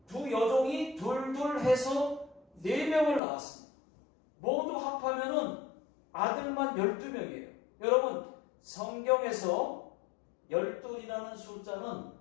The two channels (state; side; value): drops out; right; at 3.2 s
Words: 두 여종이 둘둘 해서 4명을 낳았습니다. 모두 합하면은 아들만 12명이에요. 여러분, 성경에서 12이라는 숫자는